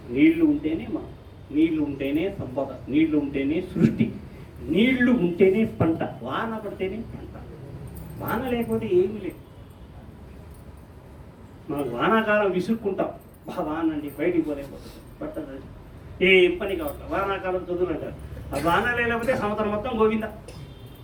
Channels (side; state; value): both; identical; correlation 1.00